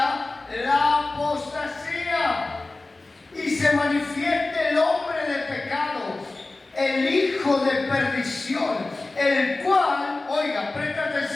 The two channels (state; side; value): quieter; right; 3.2 dB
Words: la apostasía y se manifieste el hombre de pecado, el hijo de perdición, el cual, oiga, presta